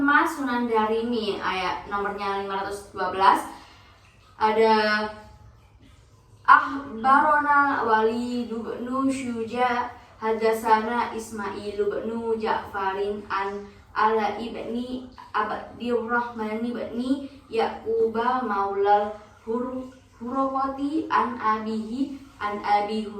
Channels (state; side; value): identical; both; correlation 1.00